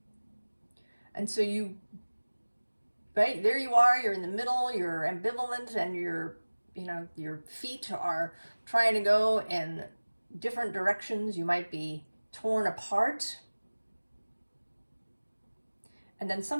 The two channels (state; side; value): inverted; both; correlation -1.00